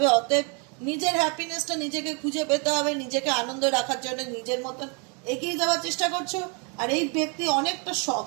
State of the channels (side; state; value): left; quieter; 35.3 dB